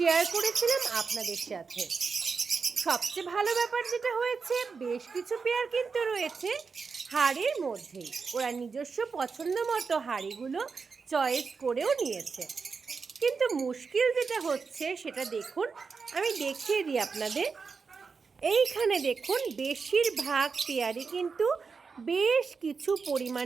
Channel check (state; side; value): quieter; left; 5.1 dB